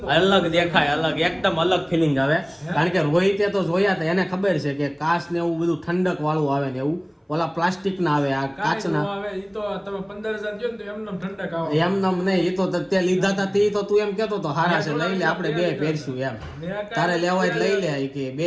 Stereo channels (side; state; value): both; identical; correlation 1.00